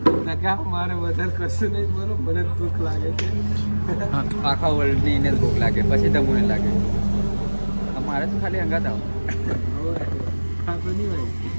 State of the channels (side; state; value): both; inverted; correlation -1.00